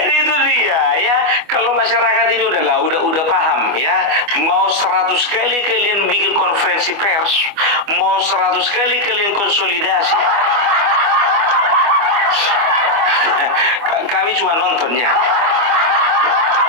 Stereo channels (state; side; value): late; left; 25 ms